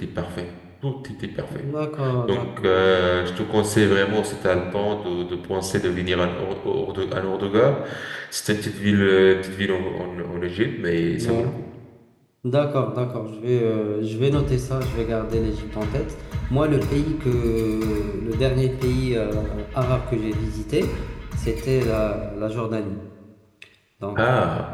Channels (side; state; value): both; identical; correlation 1.00